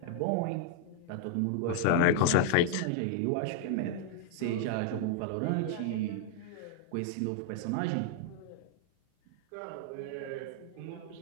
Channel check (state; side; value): different; both; correlation 0.00